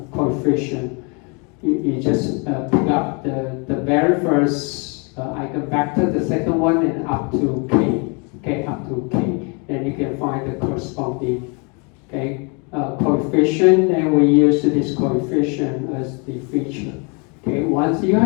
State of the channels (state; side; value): quieter; right; 33.6 dB